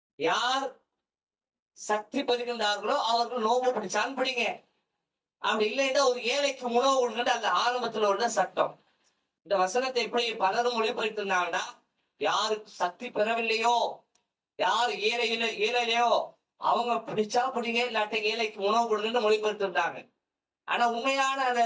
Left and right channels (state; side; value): identical; both; correlation 1.00